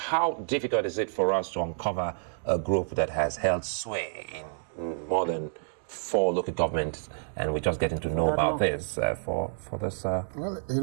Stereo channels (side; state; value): left; silent; digital silence